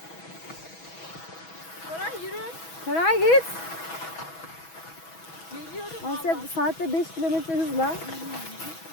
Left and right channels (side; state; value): right; late; 6.1 ms